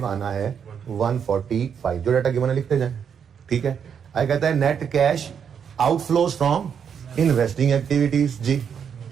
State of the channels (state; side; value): quieter; left; 7.5 dB